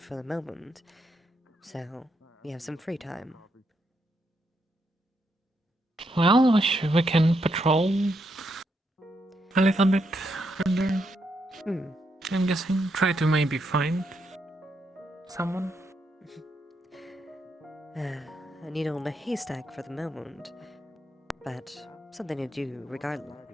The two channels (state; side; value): normal; both; correlation 0.80